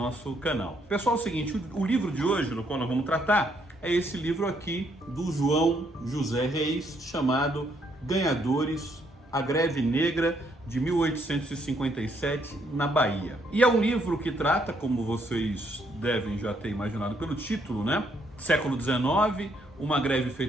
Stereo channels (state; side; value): normal; both; correlation 0.72